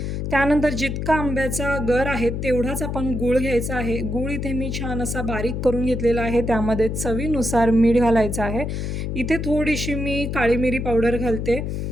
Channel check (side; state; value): left; noise; hum, 3 dB below the sound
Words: त्यानंतर जितका आंब्याचा गर आहे तेवढाच आपण गूळ घ्यायचा आहे। गूळ इथे मी छान असा बारीक करून घेतलेला आहे। त्यामध्ये चवीनुसार मीठ घालायचं आहे। इथे थोडीशी मी काळी मिरी पावडर घालते।